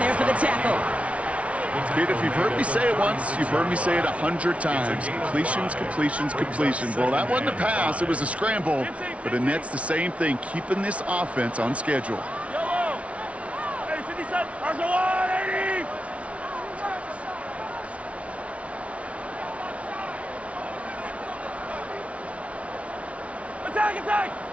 for the tackle. Kate, if you've heard me say it once, you've heard me say it 100 times. Completions. Well, that wasn't a pass, it was a scramble. But Annette's the same thing, keeping this offense on schedule. Yellow. Hey, 57. Arsenal. Attack.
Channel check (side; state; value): left; late; 0.063 ms